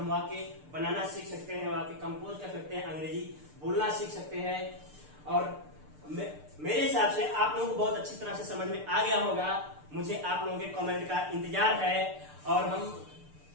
वाक्य बनाना सीख सकते हैं, वाक्य कंपोज कर सकते हैं, अंग्रेजी बोलना सीख सकते हैं। और मेरे हिसाब से आप लोगों को बहुत अच्छी तरह से समझ में आ गया होगा। मुझे आप लोगों के कमेंट का इंतजार है और हम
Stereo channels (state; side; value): late; left; 6.7 ms